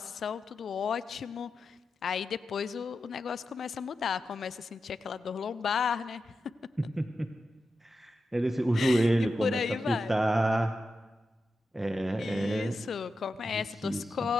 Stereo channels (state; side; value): normal; both; correlation 0.90